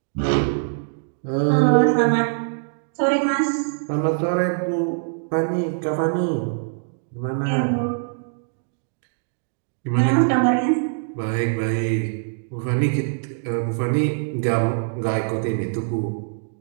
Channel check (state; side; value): silent; left; digital silence